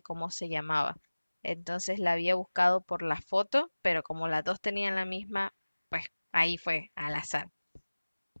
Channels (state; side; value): inverted; both; correlation -1.00